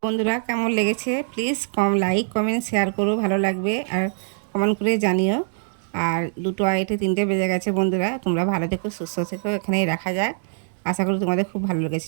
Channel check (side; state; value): left; silent; digital silence